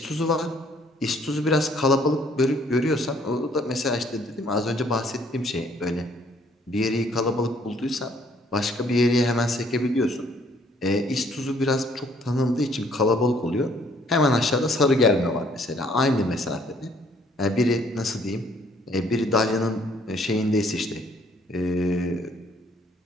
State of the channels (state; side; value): normal; both; correlation 0.63